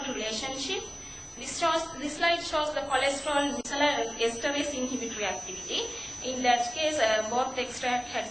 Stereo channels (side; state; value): both; identical; correlation 1.00